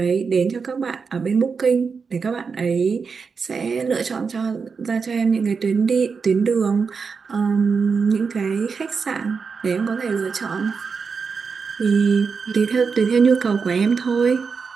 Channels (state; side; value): quieter; left; 5.3 dB